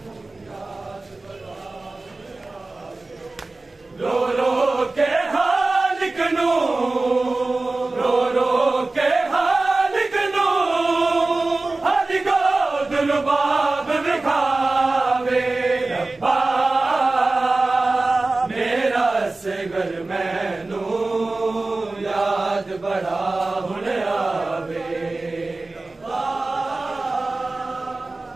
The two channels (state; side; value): quieter; left; 3.2 dB